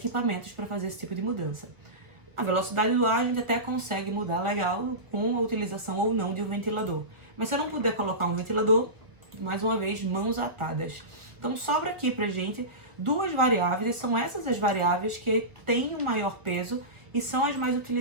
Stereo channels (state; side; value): late; left; 1.7 ms